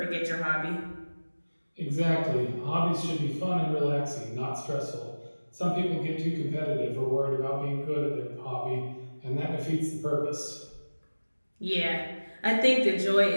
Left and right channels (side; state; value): both; inverted; correlation -1.00